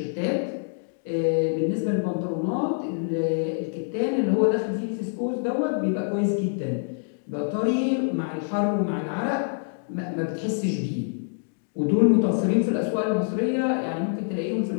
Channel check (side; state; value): right; silent; digital silence